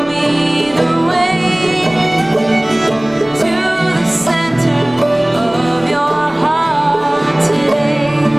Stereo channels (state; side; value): noise; left; rumble, 25 dB below the sound